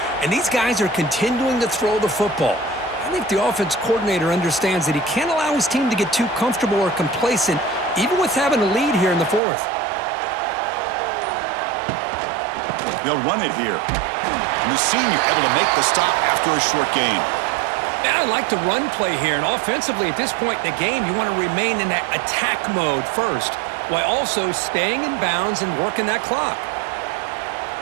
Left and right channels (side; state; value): left; drops out; at 9.4 s